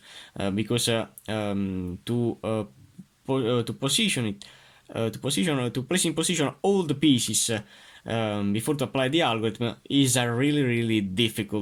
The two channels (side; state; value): both; identical; correlation 1.00